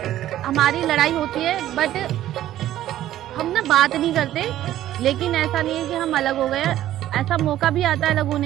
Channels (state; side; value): quieter; left; 13.2 dB